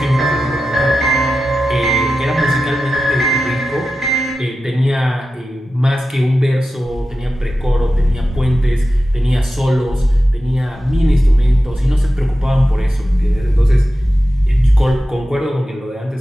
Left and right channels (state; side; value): normal; both; correlation 0.92